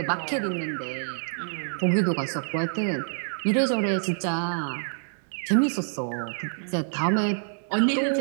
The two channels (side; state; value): left; silent; digital silence